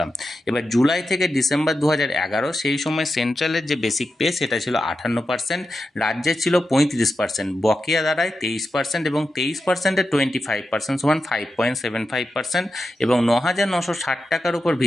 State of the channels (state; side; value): normal; both; correlation 0.89